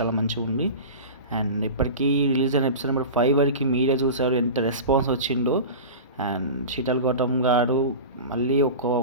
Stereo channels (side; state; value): both; inverted; correlation -0.30